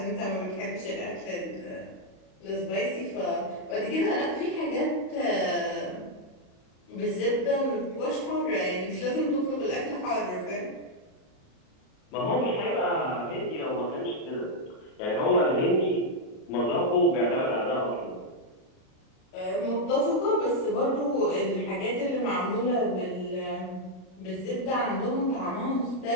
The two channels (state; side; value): late; right; 38 ms